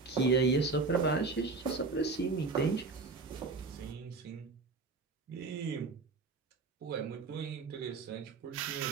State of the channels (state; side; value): quieter; left; 4.1 dB